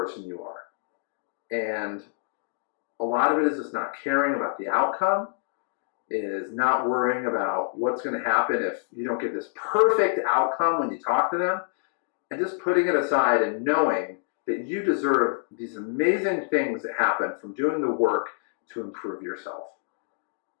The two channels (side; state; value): right; silent; digital silence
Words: you are. And a lot of it is just not caring about the outcome, is not worrying about what's going to happen if you don't get this perfect outcome when you talk to them, and just putting it aside and knowing that you deserve these amazing things that happen from doing the work to improve yourself.